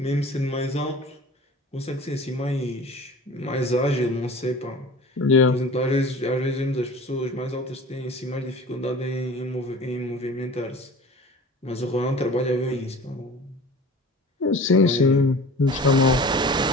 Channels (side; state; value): both; normal; correlation 0.41